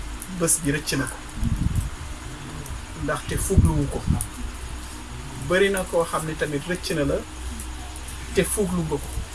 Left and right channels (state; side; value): identical; both; correlation 1.00